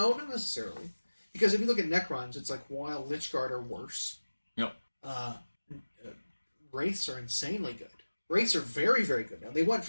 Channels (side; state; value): both; inverted; correlation -1.00